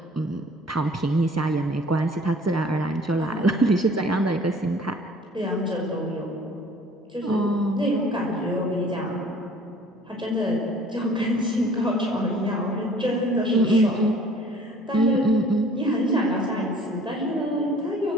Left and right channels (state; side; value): normal; both; correlation 0.51